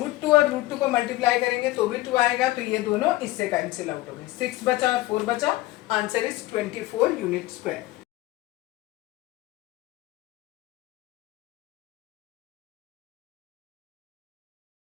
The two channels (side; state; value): right; quieter; 18.2 dB